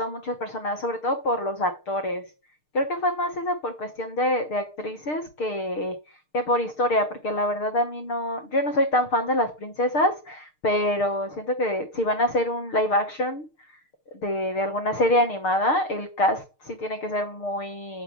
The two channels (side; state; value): right; late; 6.6 ms